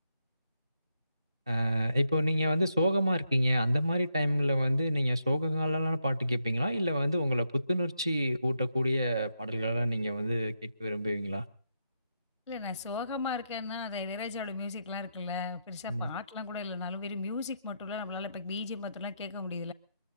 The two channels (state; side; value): inverted; both; correlation -0.82